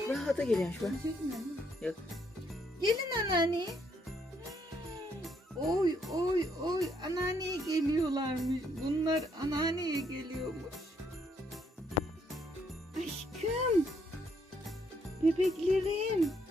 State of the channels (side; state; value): both; normal; correlation 0.72